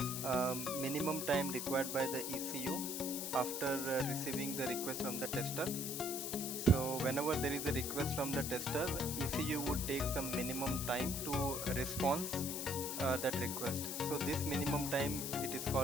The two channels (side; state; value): left; noise; hiss, 3 dB below the sound